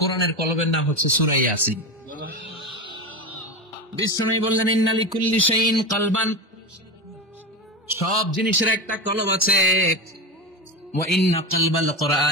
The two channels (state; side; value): normal; both; correlation 0.20